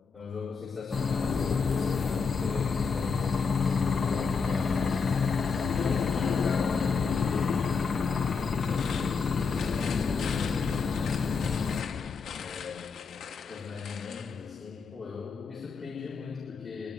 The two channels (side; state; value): right; quieter; 5.2 dB